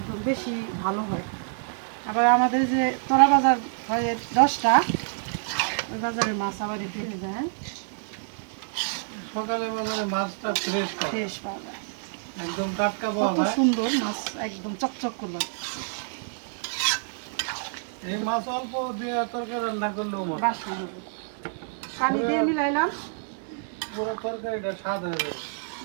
বেশি ভালো হয়। আবার আমাদের যে তোরা বাজার হয় 10টা, ওই বাজারের মাছ আবার একটু হয়ে যায়। সকালে বাজারে মাছটা ফ্রেশ পাওয়া যায়, একদম টাটকা পাওয়া কত যায়। সুন্দর মাছ, একদম চকচক করলো। এই মাছ অল্প দিয়ে তরকারি রান্না করলেও মজা। বাসনা হবে। পানি দিয়ে মিলাইলাম, পুরো তরকারিটা স্বাদ হয়ে যাবে।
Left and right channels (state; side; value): silent; left; 60 dB below the other